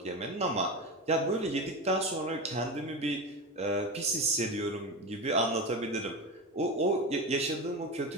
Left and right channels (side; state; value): both; normal; correlation 0.22